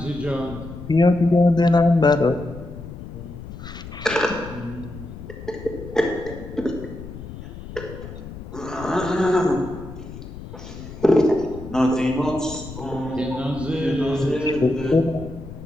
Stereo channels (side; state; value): left; noise; rumble, 12 dB below the sound